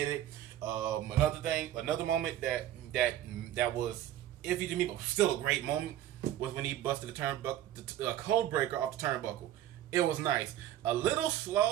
it. Another moment that was iffy to me, but still a great moment, was when he busted the code breaker off the turnbuckle. It was nice. A little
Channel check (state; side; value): quieter; left; 12.5 dB